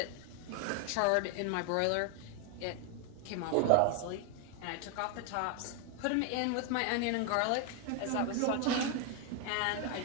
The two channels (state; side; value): different; both; correlation 0.01